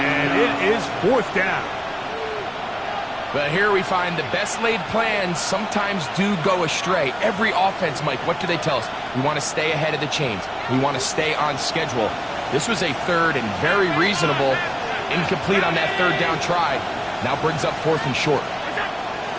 it is 4th down. But here we find the best laid plans sometimes do go astray. Every offense, Mike, what do they tell us? We want to stay ahead of the chains. We want to stay on schedule. This was a 3rd and very reasonable. Incomplete on that 3rd down try. Now brings up 4th and short.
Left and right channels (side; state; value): both; identical; correlation 1.00